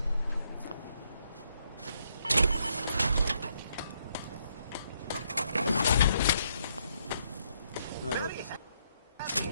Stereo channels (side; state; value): both; inverted; correlation -0.74